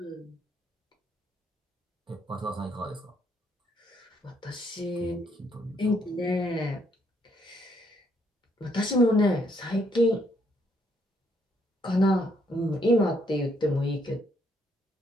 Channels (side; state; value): both; normal; correlation 0.71